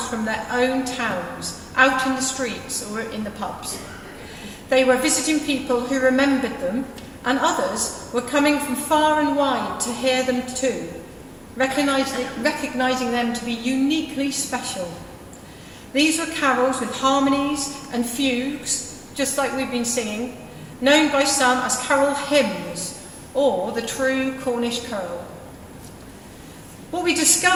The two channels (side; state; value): both; identical; correlation 1.00